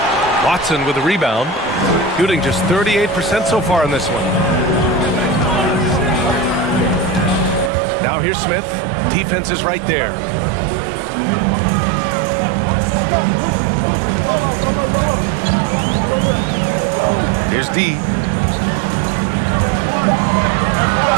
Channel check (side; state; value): left; drops out; at 7.7 s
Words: Watson with the rebound. Shooting just 38% so far in this one. Now here's Smith. Defense is right there. Here's D.